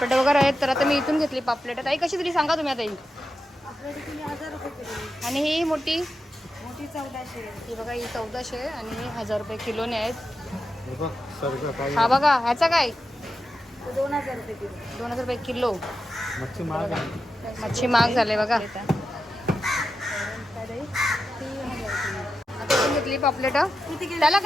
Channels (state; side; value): normal; both; correlation 0.89